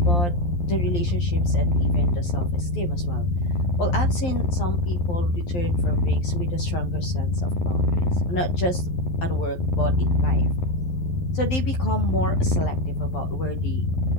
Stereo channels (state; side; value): late; right; 11 ms